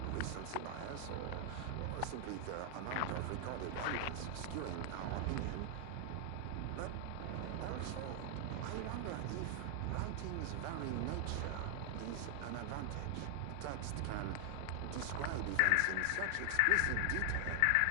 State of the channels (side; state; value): both; different; correlation 0.00